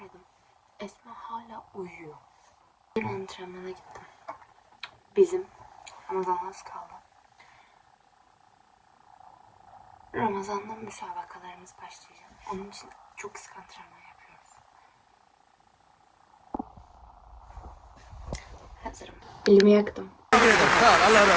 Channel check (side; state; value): both; identical; correlation 1.00